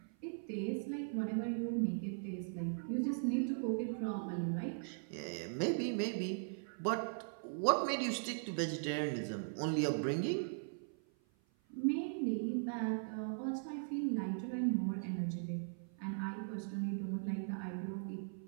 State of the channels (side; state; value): left; silent; 51 dB below the other